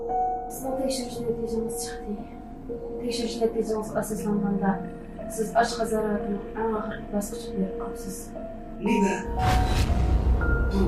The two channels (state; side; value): identical; both; correlation 1.00